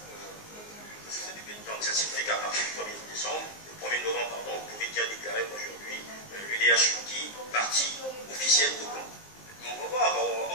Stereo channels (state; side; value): late; right; 19 ms